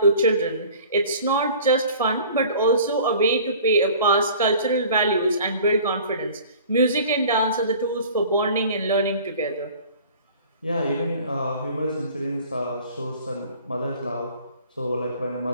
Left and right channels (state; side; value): inverted; both; correlation -0.46